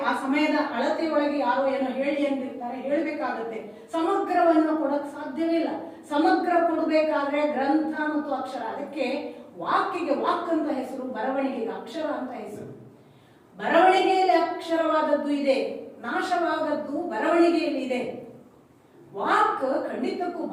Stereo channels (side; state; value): both; identical; correlation 1.00